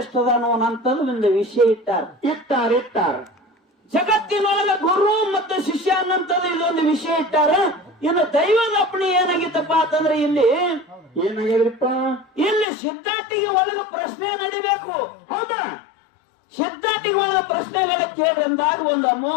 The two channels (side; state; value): right; drops out; at 12.7 s